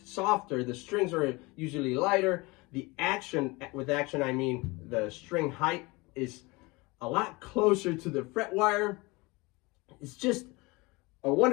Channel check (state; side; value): quieter; right; 24.5 dB